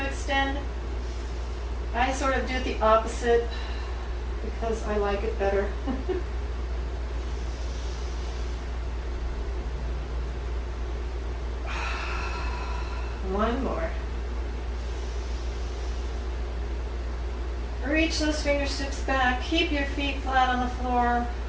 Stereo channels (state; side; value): identical; both; correlation 1.00